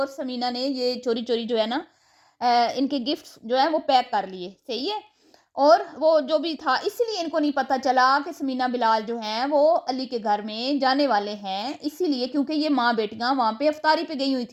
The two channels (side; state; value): both; identical; correlation 1.00